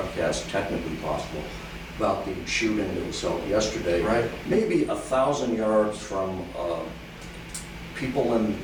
technically possible, about the shooting that was held yesterday. Right. Maybe 1,000 yards from people in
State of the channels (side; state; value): both; identical; correlation 1.00